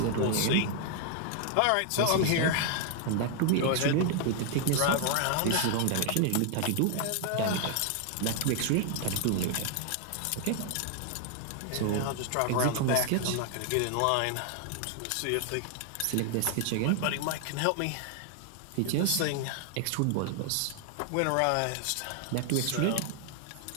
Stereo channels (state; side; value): different; both; correlation 0.00